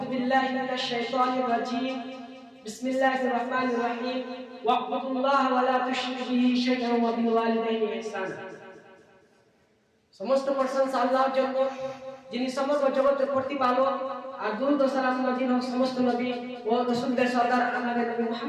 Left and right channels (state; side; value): identical; both; correlation 1.00